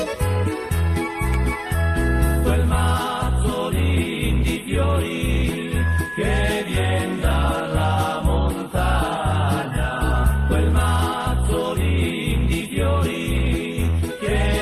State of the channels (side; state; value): both; identical; correlation 1.00